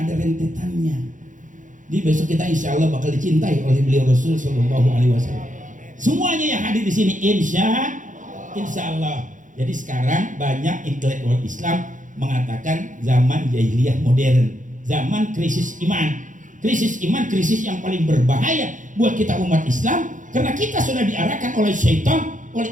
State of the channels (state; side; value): late; left; 0.37 ms